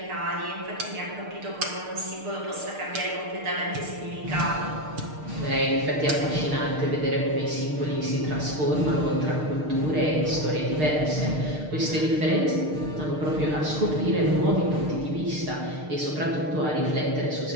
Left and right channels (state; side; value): late; left; 6.6 ms